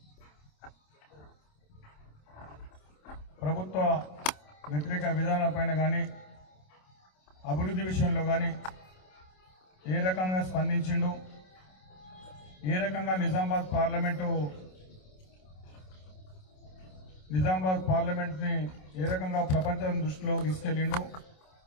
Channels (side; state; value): right; late; 27 ms